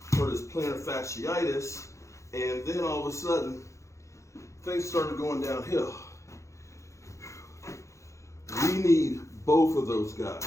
hurt his plantar fasciitis, and then all of a sudden, things started going downhill. We need both of those guys.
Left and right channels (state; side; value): late; right; 0.15 ms